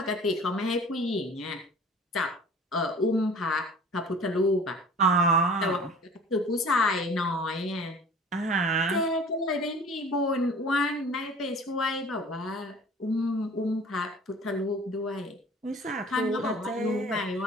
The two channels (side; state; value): both; normal; correlation 0.45